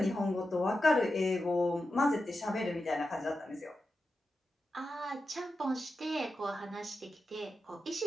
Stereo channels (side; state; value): both; normal; correlation 0.90